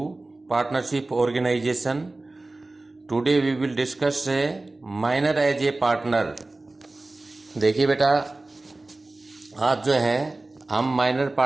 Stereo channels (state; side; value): quieter; left; 3.0 dB